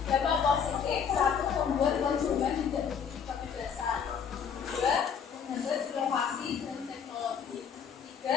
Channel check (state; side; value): quieter; right; 7.1 dB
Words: Dampak positif. 1. Membuat konsumen tidak memiliki kebebasan. 2. Menghambat inovasi dan teknologi.